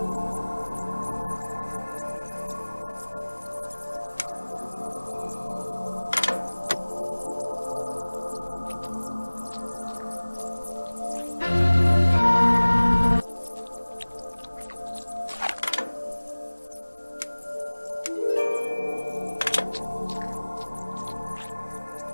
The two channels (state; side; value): inverted; both; correlation -1.00